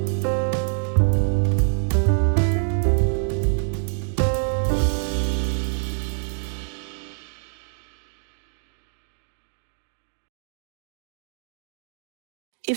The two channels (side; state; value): left; silent; digital silence